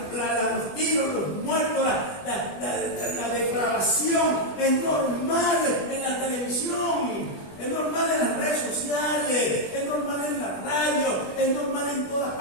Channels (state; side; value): late; right; 20 ms